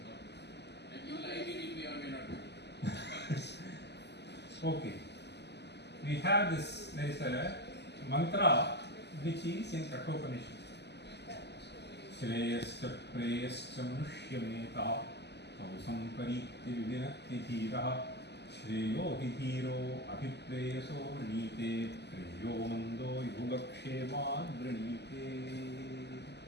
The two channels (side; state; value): right; late; 0.50 ms